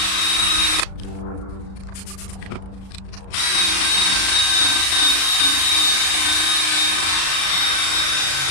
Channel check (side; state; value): right; late; 36 ms